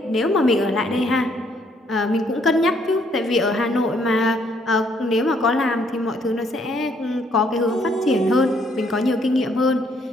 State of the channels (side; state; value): both; normal; correlation 0.68